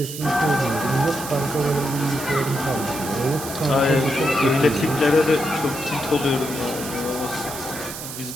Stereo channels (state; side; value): noise; right; hiss, 9 dB below the sound